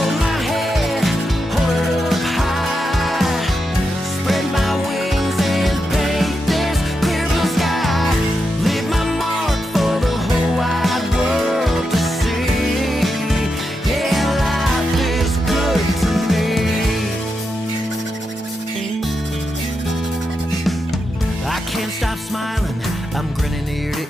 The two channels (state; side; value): normal; both; correlation 0.86